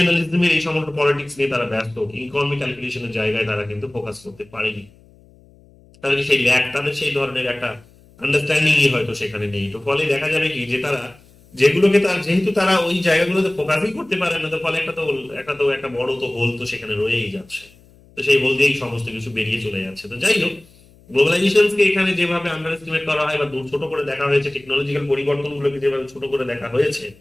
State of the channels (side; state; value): left; noise; hum, 27 dB below the sound